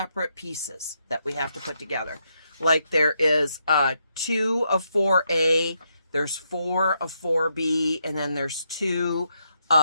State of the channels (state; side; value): inverted; both; correlation -0.79